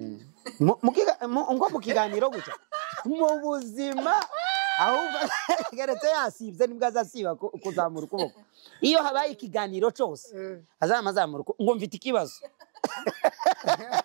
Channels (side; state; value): left; silent; digital silence